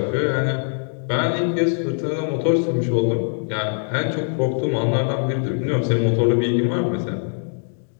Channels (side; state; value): right; silent; digital silence